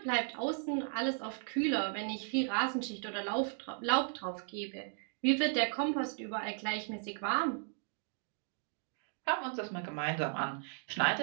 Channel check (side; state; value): left; silent; 54 dB below the other